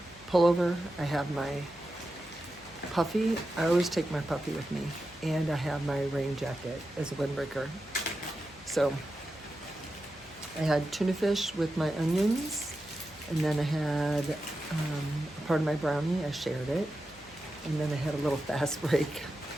pullover, I have my puffy. I always take my puffy with me. And I have my rain jacket as a windbreaker. So I had tuna fish with my onions. And then I had a part of my brownie, I shared it. And then I had a little fast break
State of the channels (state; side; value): noise; left; hum, 23 dB below the sound